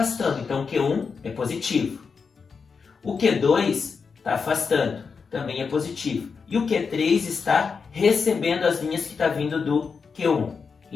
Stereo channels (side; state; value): right; quieter; 5.4 dB